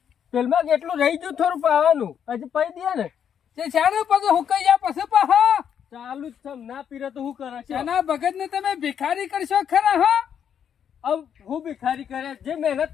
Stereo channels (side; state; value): right; quieter; 8.4 dB